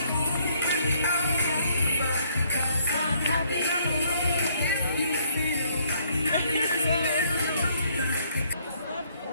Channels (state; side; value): inverted; both; correlation -0.67